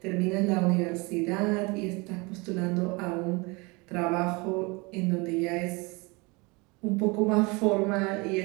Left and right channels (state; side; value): quieter; left; 26.9 dB